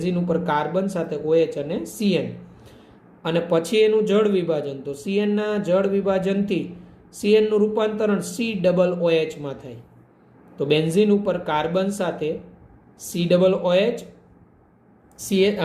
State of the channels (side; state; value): both; identical; correlation 1.00